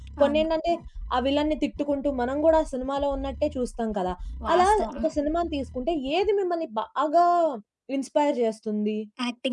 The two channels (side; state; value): both; identical; correlation 1.00